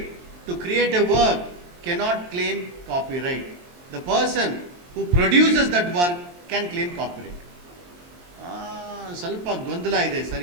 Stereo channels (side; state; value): left; late; 23 ms